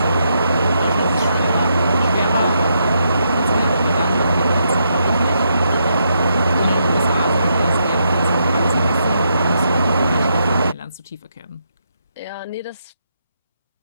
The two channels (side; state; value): both; inverted; correlation -0.79